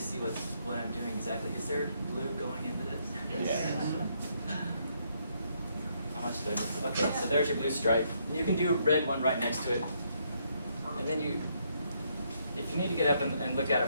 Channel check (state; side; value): inverted; both; correlation -0.73